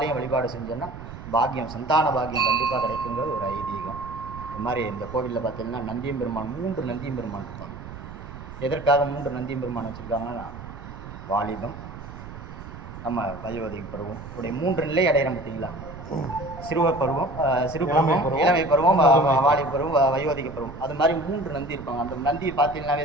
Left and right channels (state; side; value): noise; right; rumble, 12 dB below the sound